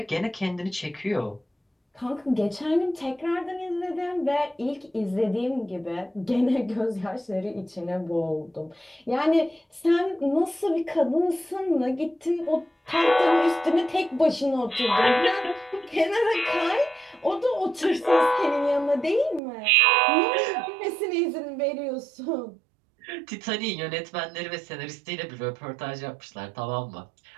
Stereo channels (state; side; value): drops out; left; at 19.4 s